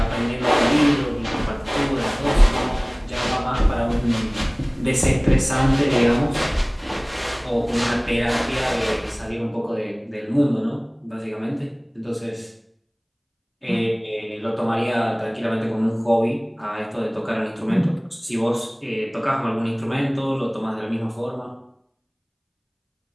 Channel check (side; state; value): both; identical; correlation 1.00